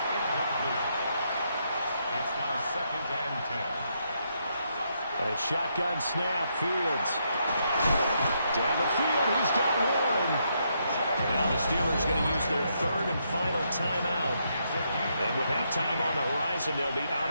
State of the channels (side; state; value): both; inverted; correlation -0.78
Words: second and 10. A shotgun snap, Fields. Down the field, he's got one. Now the Steelers going to use their third and final timeout. And with halftime on the horizon, they'll be